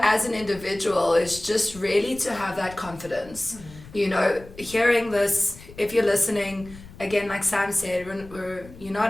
as an individual, is just really to have that confidence. You know, hearing this, if you're listening, again, like Sam said, you're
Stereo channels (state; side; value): noise; left; rumble, 19 dB below the sound